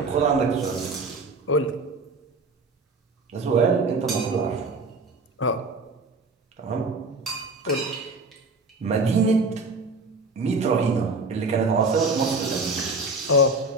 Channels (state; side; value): quieter; left; 3.1 dB